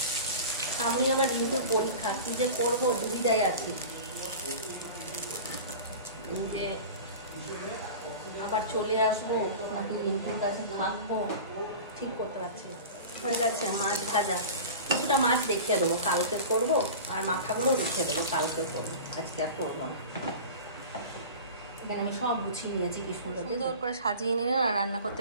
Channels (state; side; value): inverted; both; correlation -0.34